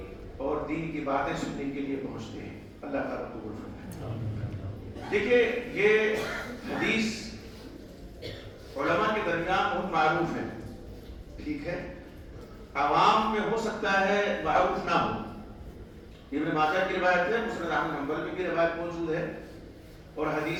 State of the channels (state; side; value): identical; both; correlation 1.00